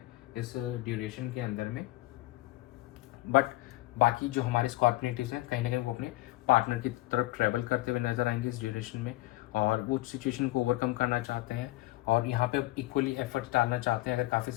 इस ड्यूरेशन के अंदर में। बट बाकी जो हमारे स्कॉर्पिनेटिव्स हैं कहीं ना कहीं वो अपने पार्टनर की तरफ ट्रैवल करते हुए नजर आएंगे इस ड्यूरेशन में, और वो सिचुएशन को ओवरकम करना चाहते हैं और यहाँ पे इक्वली एफर्ट्स डालना चाहते हैं। अगर काफ़ी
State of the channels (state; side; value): quieter; right; 19.0 dB